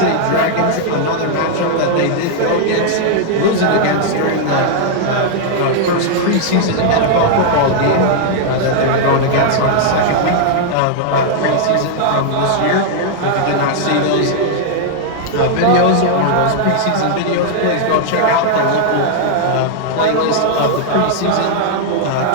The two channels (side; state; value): both; different; correlation -0.01